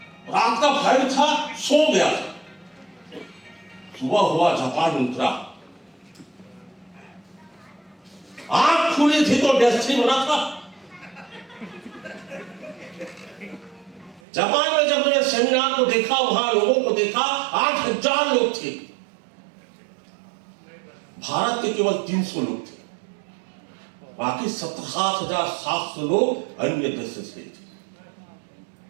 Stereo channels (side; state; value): left; drops out; at 14.2 s